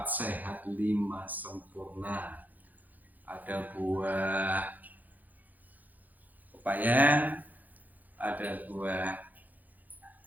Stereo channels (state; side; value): late; left; 0.082 ms